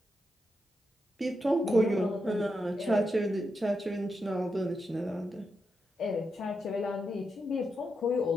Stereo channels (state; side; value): normal; both; correlation 0.85